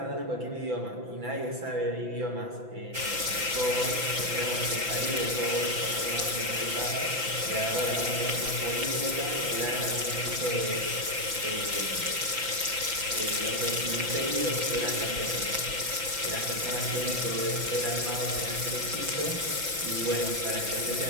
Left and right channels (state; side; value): late; left; 5.9 ms